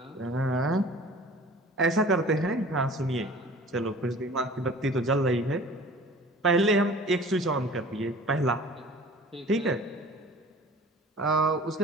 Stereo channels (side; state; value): both; normal; correlation 0.45